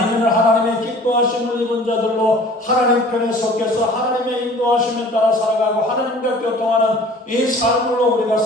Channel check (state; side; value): normal; both; correlation 0.48